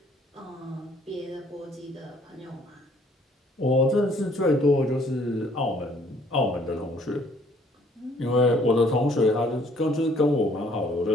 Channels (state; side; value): normal; both; correlation 0.61